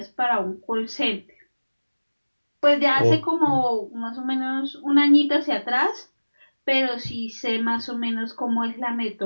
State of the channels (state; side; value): inverted; both; correlation -1.00